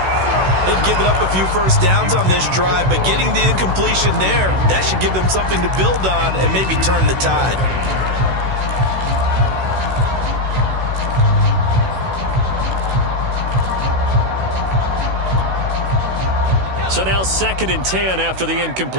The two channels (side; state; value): left; late; 16 ms